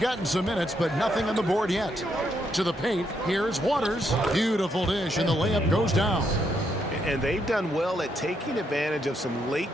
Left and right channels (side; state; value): both; normal; correlation 0.77